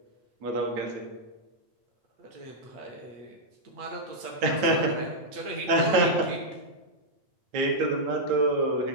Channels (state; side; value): late; left; 8.5 ms